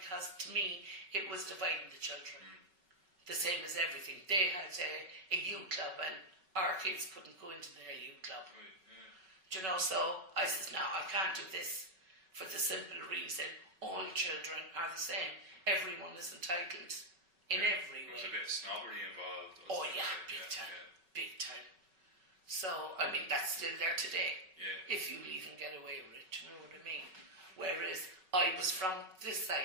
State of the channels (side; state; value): left; late; 5.3 ms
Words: to me, it was dividing the children. The same as everything. They had a youth club, and our kids couldn't go into their youth club. Do you know, so I said, no, I can't do this, for the simple reason all children are the same. Everyone is entitled in every way. There was a bit of snobbery involved. Oh yeah, big time. So, I mean, that's still there today. If you even get away with it, you whereas I was from this